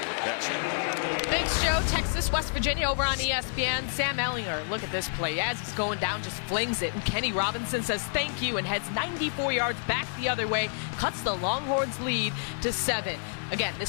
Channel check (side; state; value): right; silent; 59 dB below the other